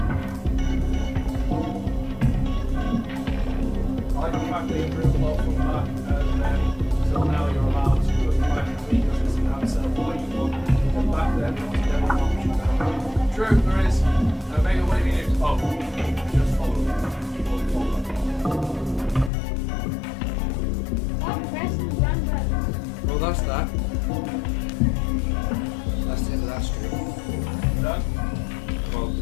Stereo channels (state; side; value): drops out; right; at 19.3 s